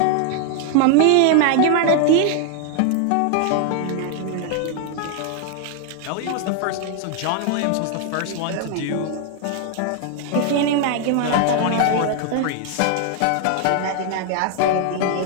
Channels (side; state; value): both; different; correlation 0.00